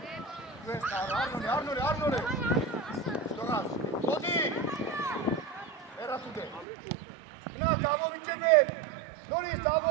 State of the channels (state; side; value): drops out; left; at 6.7 s